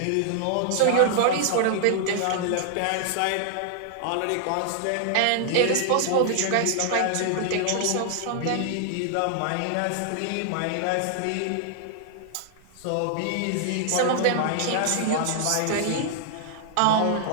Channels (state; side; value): different; both; correlation -0.01